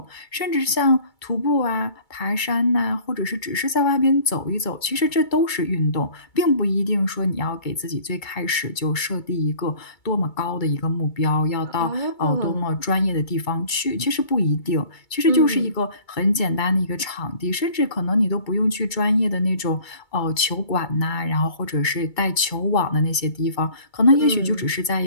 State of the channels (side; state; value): right; late; 2.3 ms